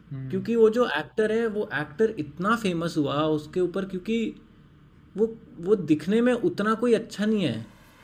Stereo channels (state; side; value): identical; both; correlation 1.00